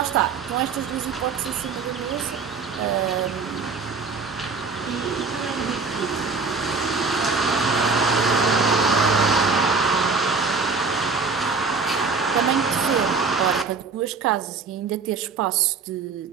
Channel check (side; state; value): left; quieter; 4.7 dB